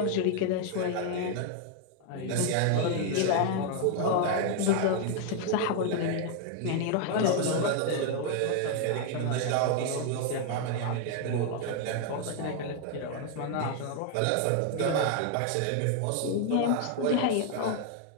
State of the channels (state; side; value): different; both; correlation 0.00